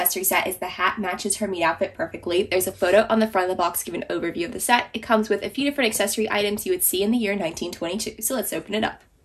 set is the hat matches her meat outfit perfectly. There's a photo on the front of the box giving an overview of the set. It comes with a few different accessory items you would see in the year 1922. So let's open it up.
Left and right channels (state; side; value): identical; both; correlation 1.00